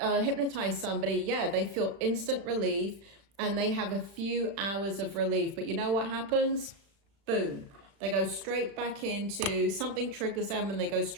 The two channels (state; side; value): late; left; 36 ms